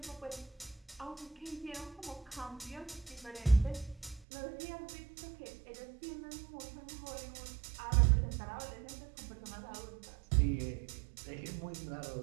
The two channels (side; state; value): left; drops out; at 4.2 s